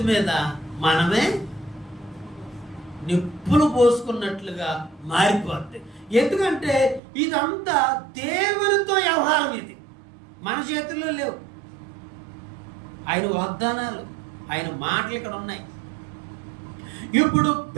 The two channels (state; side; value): drops out; left; at 7.0 s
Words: మీద మనమే నిప్పులు పోసుకున్నట్లుగా మారిపోద్ది. ఎందుకంటే ఇదంతా దేవునితో వ్యవహారం, ఇది మన చేతుల్లో లేవు. ఆయన వాగ్దానాలు, ఆయన మాటలు ఇక్కడ ఉన్నాయి. ఇప్పుడు